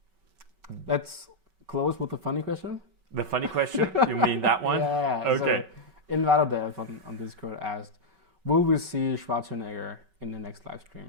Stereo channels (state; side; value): late; left; 5.3 ms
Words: Let's close with the funny question. The funny question? You mean that one? Yeah. Okay. So Invadadev on Discord asked, will we see Schwarzenegger in the next live